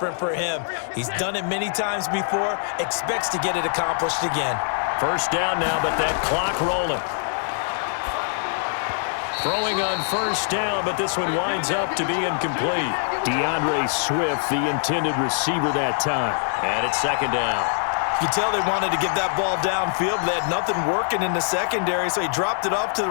for him. He's done it many times before, expects to get it accomplished again. 1st down now, but that clock rolling. Throwing on 1st down, but this one winds up to be incomplete. DeAndre Swift, the intended receiver that time. And it's 2nd down. You can tell they wanted to get that ball downfield. They had nothing working in the secondary, so he dropped it off to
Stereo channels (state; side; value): silent; right; digital silence